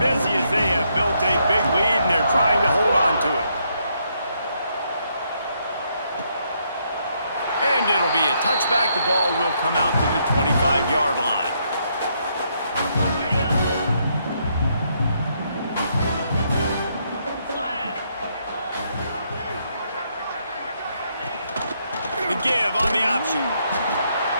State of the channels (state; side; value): inverted; both; correlation -0.75